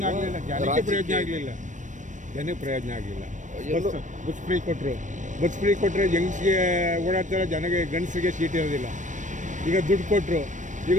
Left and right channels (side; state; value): left; late; 0.36 ms